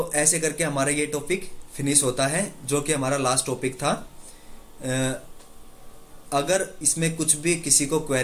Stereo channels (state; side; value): identical; both; correlation 1.00